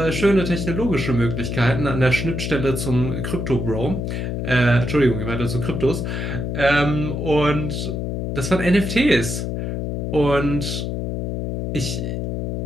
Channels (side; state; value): left; noise; hum, 2 dB below the sound